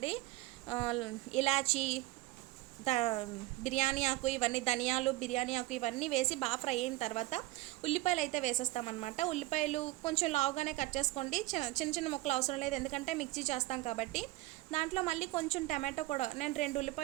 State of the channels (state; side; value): quieter; left; 18.6 dB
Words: ఇలాచీ, బిర్యానీ ఆకు, ఇవన్నీ ధనియాలు, బిర్యానీ ఆకు ఇవన్నీ వేసి బాగా ఫ్రై అయిన తర్వాత ఉల్లిపాయలు అయితే వేసేస్తామన్నమాట. ఉల్లిపాయలు కొంచెం లావుగానే కట్ చేసుకోండి, చిన్న చిన్న ముక్కలు అవసరం లేదు, ఎందుకంటే మిక్సీ చేస్తాం కాబట్టి. దాంట్లో మళ్ళీ కొంచెం టమాటో కూడా, నేను 2